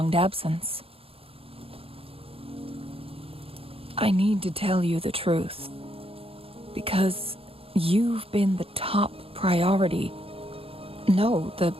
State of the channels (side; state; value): left; late; 0.27 ms